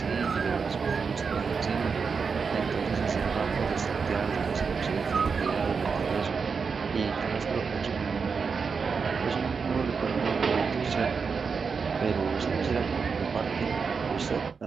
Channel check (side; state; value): left; quieter; 5.4 dB